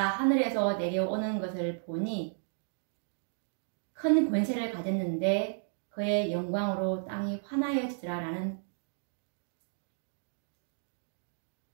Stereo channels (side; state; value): left; silent; digital silence